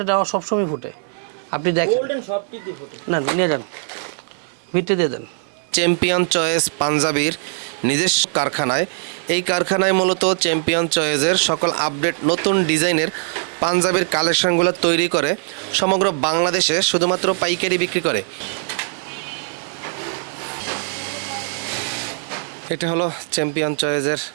দেওয়া সবসময় ফুটে। আপনি দেখেন গোল্ডেন সবটিতে ফোটে না, নিয়ে যান ভিতরে দিয়ে দেন। চ্যাম্পিয়ন চয়েস পাঞ্জাবির নিজস্ব কারখানায়, এই কারখানায় মূলত চ্যাম্পিয়ন চয়েসের সকল আপডেট নতুন ডিজাইনের পাঞ্জাবির কালেকশনগুলো তৈরি করে সমগ্র বাংলাদেশে শুধুমাত্র পাইকারি বিক্রি করে। এটা হলো চ্যাম্পিয়ন চয়েসের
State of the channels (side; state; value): left; silent; digital silence